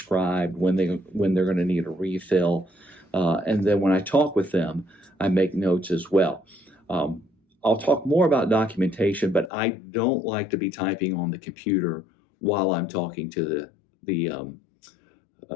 when they're going to need a refill. And then when I talk with them, I make notes as well. I'll talk more about documentation, but I don't like to be typing on the computer while I'm talking to the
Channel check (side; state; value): right; drops out; at 9.5 s